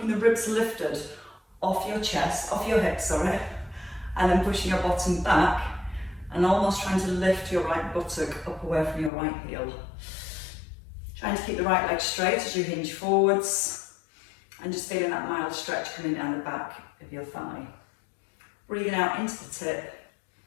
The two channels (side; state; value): right; drops out; at 9.1 s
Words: the ribs lifted off your chest, off your hips, sorry, and then pushing your bottom back and almost trying to lift your right buttock up away from your right heel. Trying to keep the right leg straight as you hinge forwards and just feeling that mild stretch coming down the back of your thigh. Breathing out into the tip